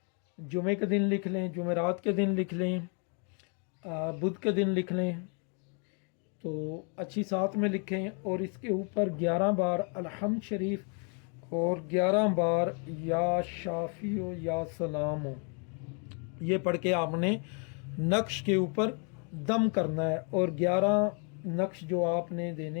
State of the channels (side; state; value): right; quieter; 38.3 dB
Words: जुमे के दिन लिख लें, जुमेरात के दिन लिख लें, बुध के दिन लिख लें, तो अच्छी साथ में लिखें। और इसके ऊपर 11 बार अलहम्द शरीफ और 11 बार या शाफियो या सलामो ये पढ़ के आपने नक्श के ऊपर दम करना है। और 11 नक्श जो आपने